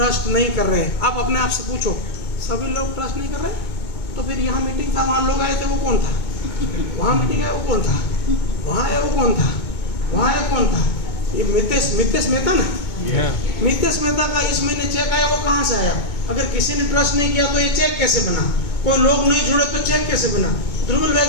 नहीं कर रहे हैं, आप अपने आप से पूछो सभी लोग ट्रस्ट नहीं कर रहे, तो फिर यहाँ मीटिंग था, वहाँ लोग आए थे, वो कौन था? वहाँ मीटिंग है, वो कौन था? वहाँ है, वो कौन था? वहाँ है, कौन था? ये मितेश मेहता ना, मितेश मेहता का इस महीने चेक आया, वो कहाँ से आया? अगर किसी ने ट्रस्ट नहीं किया तो ये चेक कैसे बना? कोई लोग नहीं जुड़े तो चेक कैसे बना? ध्रुवल भाई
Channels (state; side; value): late; right; 2.2 ms